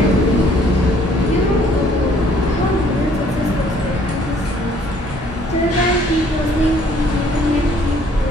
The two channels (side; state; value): both; normal; correlation 0.60